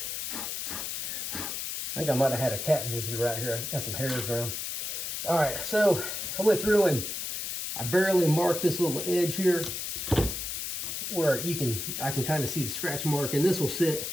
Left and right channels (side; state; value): left; noise; hiss, 4 dB below the sound